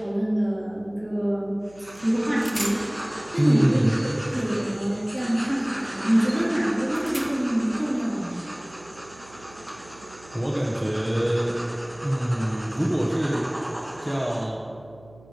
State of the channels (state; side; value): noise; right; hum, 24 dB below the sound